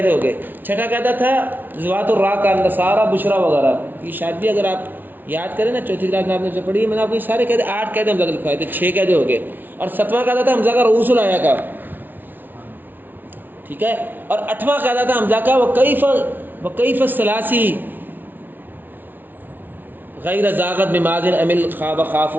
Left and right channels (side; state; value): left; late; 0.089 ms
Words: ہو گئے۔ چھٹا قاعدہ تھا ذوات الراء کا نصارہ بشرا وغیرہ، یہ شاید بھی اگر آپ یاد کریں نا چوتھی کلاس میں آپ نے سے پڑھی ہے، میں نے آپ کو یہ سارے قاعدے 8 قاعدے حمزہ کے لکھوائے تھے، 6 قاعدے ہو گئے، اور 7واں قاعدہ تھا حمزہ کا رؤوس الآیا کا، ٹھیک ہے، اور 8واں قاعدہ تھا حمزہ کا وکیف الثلاثی غیر زاغت بماضٍ عمل خواب خاف